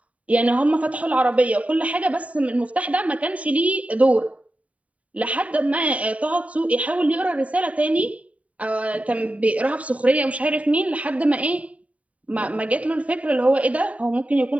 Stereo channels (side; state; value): left; late; 0.068 ms